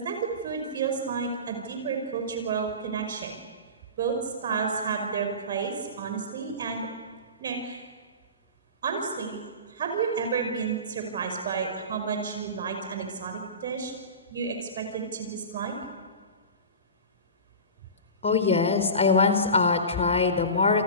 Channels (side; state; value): both; inverted; correlation -0.31